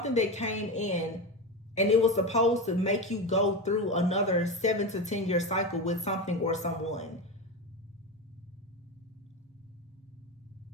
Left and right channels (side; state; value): both; normal; correlation 0.20